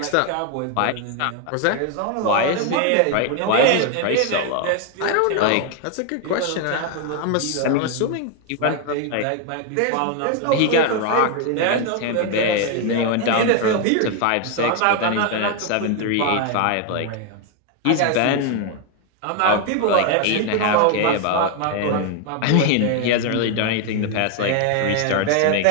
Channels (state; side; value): different; both; correlation 0.01